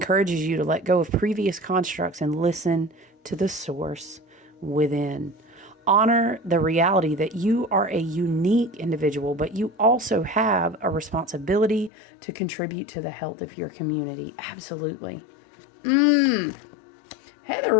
you to let go of previous constructs and listen to the source within. Honor the reality that you are a unique individual, but you also have a responsibility to contribute to the health of your community. Absolutely. Heather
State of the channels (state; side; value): drops out; right; at 11.9 s